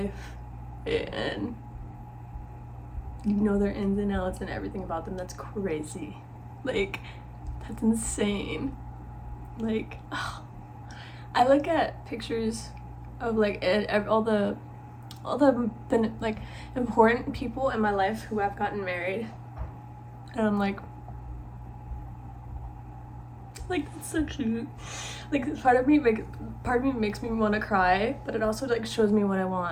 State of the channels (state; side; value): identical; both; correlation 1.00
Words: and you know their ins and outs and everything about them? That's crazy. Like, that's insane. Like, I look at pictures of like all the like important people in my life who have gotten married, and I'm like that's so cute. Like, part of me makes me want to cry, but it also like shows me what I